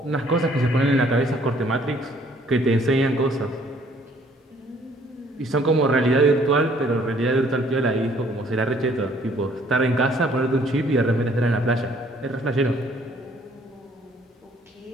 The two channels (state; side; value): normal; both; correlation 0.61